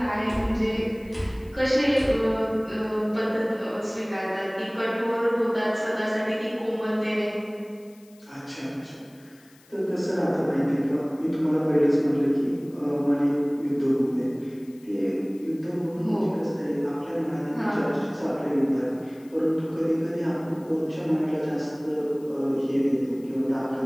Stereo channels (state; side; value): noise; left; hiss, 29 dB below the sound